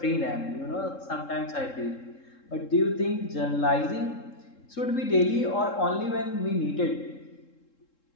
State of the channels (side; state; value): right; late; 3.7 ms